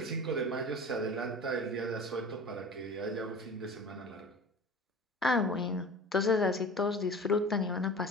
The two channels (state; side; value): normal; both; correlation 0.37